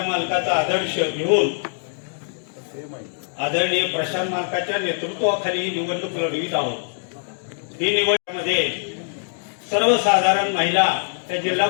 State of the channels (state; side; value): silent; right; digital silence